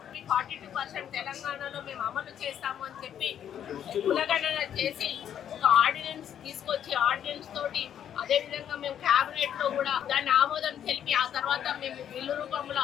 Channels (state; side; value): quieter; right; 9.6 dB